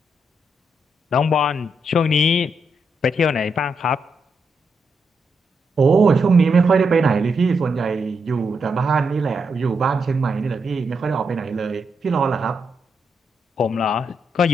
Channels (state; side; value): normal; both; correlation 0.82